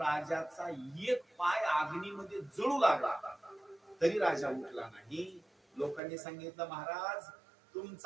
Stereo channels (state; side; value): drops out; left; at 6.0 s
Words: एक पाय अग्नीमध्ये जळू लागला, तरी राजा उठला नाही. लोकांनी सांगितलं, महाराज